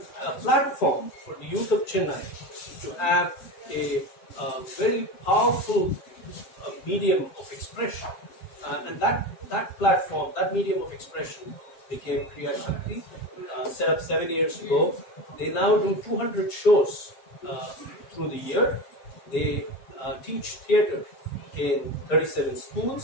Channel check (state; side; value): late; right; 7.7 ms